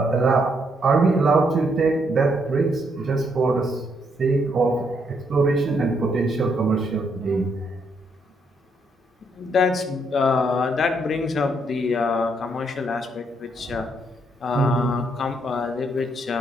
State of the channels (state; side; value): normal; both; correlation 0.74